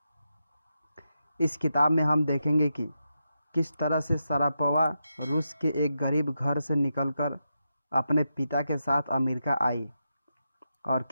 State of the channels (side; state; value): both; inverted; correlation -0.87